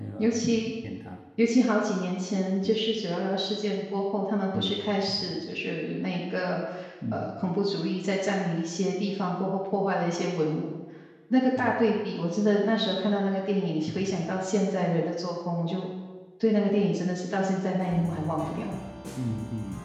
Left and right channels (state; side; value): identical; both; correlation 1.00